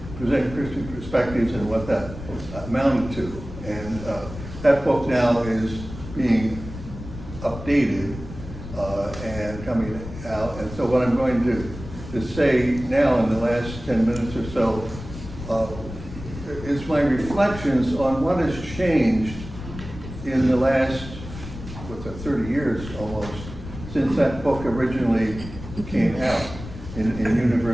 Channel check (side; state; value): left; noise; rumble, 12 dB below the sound